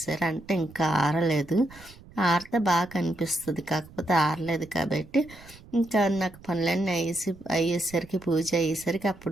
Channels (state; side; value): noise; right; rumble, 21 dB below the sound